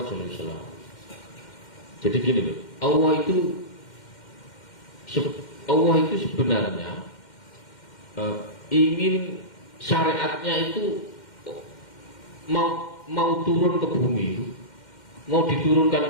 SAW. Jadi gini loh, Allah itu sebenarnya ingin syariatnya itu mau turun ke bumi itu, mau diturunkan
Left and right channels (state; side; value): late; right; 2.1 ms